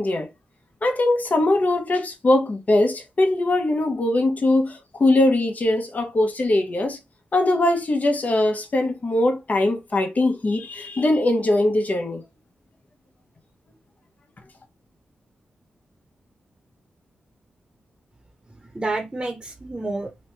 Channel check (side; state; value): both; normal; correlation 0.88